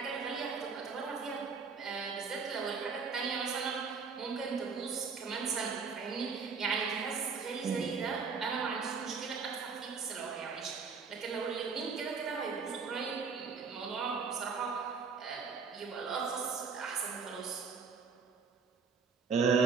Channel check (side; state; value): left; quieter; 5.2 dB